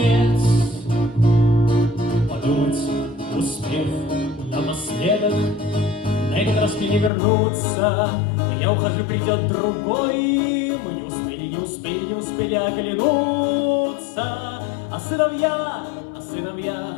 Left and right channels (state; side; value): drops out; right; at 7.1 s